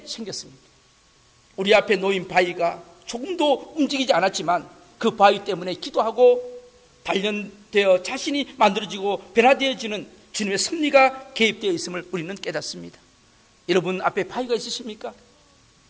생겼습니다. 우리 앞에 놓인 바위가 조금도 움직이지 않았지만 그 바위 때문에 기도하고 단련되어 자신이 만들어지고 변화되어지는 주님의 섭리가 개입되어 있음을 우리는 깨닫습니다. 여러분 앞에 바위가 있으십니까?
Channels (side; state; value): both; identical; correlation 1.00